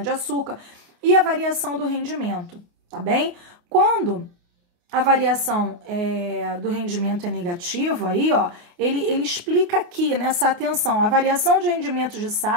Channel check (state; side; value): late; left; 28 ms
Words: e a variação do rendimento, tá bem? Quando a variação do rendimento é negativa, aí, ó, ele explica aqui nessa atenção, a variação de rendimentos de